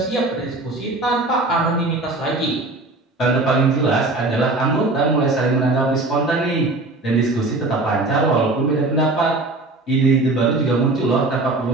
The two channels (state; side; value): quieter; left; 3.0 dB